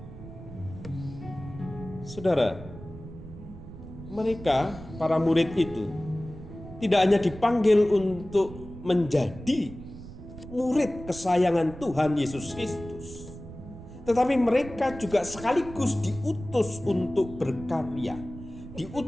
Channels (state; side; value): noise; right; rumble, 14 dB below the sound